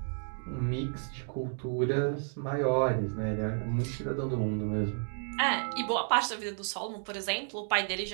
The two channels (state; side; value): silent; left; 57 dB below the other